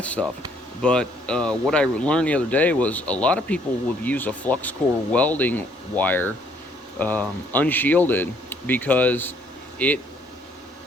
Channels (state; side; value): normal; both; correlation 0.65